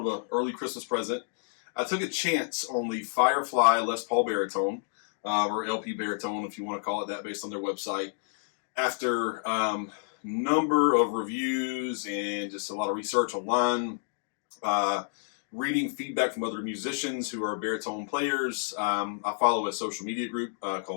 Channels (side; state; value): right; silent; digital silence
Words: of an early Christmas present. I took a chance on the FireFly Les Paul Baritone, or LP Baritone if you want to call it that, based on their website. After number of reviews and just a lot of research online, reading feedback from other musicians who are baritone players. I follow a social media group